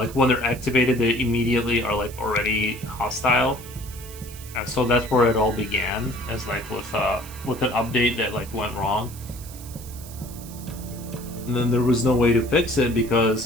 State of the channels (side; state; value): right; noise; hiss, 16 dB below the sound